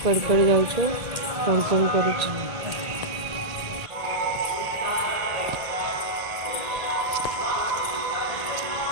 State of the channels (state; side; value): late; left; 1.8 ms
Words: कड़े जाऊँ कौन कौन करुँ।